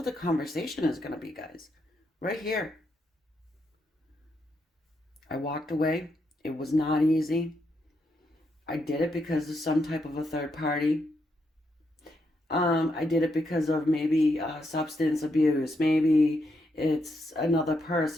the conversation is going to be, guys. Right here. I walked away. It was not easy. I did it because of some type of a third party. I did it because of maybe substance abuse. Maybe it's another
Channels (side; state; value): both; normal; correlation 0.80